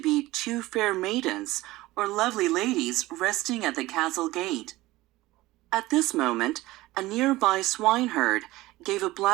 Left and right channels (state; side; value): quieter; left; 18.4 dB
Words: 2 fair maidens or lovely ladies resting at the castle gate. At this moment, a nearby swineherd gave a